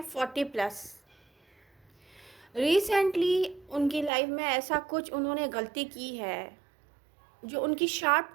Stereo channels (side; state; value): left; drops out; at 4.1 s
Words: 40 प्लस। रिसेंटली उनकी लाइफ में ऐसा कुछ उन्होंने गलती की है जो उनकी